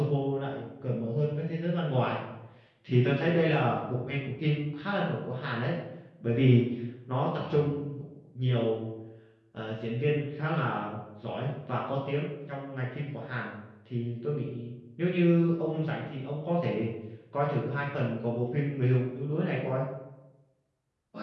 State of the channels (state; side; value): identical; both; correlation 1.00